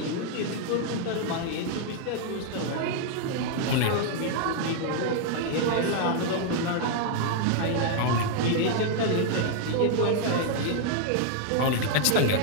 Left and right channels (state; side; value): different; both; correlation 0.00